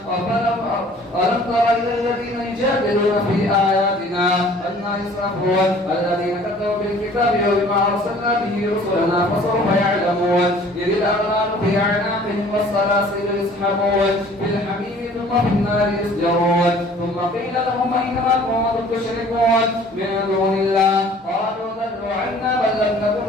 ألم تر إلى الذين يجادلون في آياتنا أنى يصرفون الذين كفروا بالكتاب وما أرسلنا به رسلنا فسوف يعلمون. إذ الأغلال في أعناقهم والسلاسل يسحبون في الحميم ثم في النار يسجرون. ثم قيل لهم أين ما كنتم تشركون من دون الله قالوا ضلوا عنا بل لم نكن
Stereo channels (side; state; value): both; normal; correlation 0.52